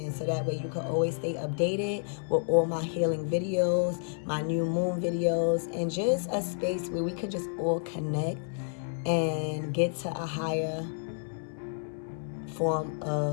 so that way you can always stay updated with all my healing videos, my new moon videos, and just a space where we can just all connect and get to a higher form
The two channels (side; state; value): right; silent; 58 dB below the other